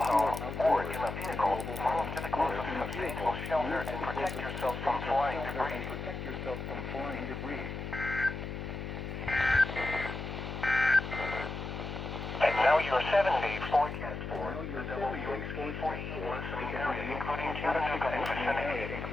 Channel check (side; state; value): left; noise; hum, 6 dB below the sound